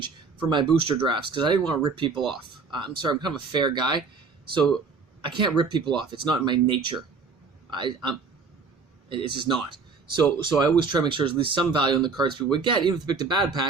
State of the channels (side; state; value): left; quieter; 4.7 dB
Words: for my booster drafts, because I didn't want to rip people off. I'm sorry, I'm kind of a fair guy, so I can't rip people off. It's not in my nature. It's just not. So I always try to make sure there's at least some value in the cards people would get, even if they picked a bad